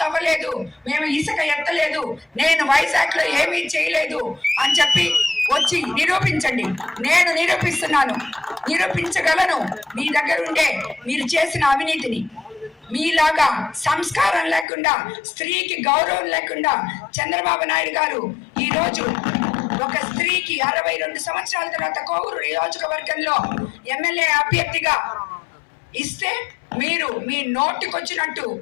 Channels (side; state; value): right; drops out; at 14.7 s